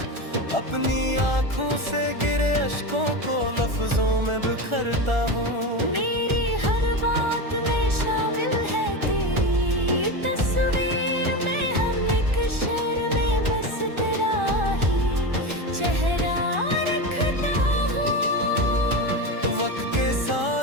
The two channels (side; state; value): left; late; 1.4 ms